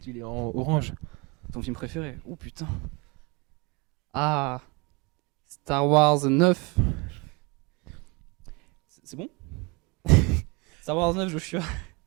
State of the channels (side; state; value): left; quieter; 26.8 dB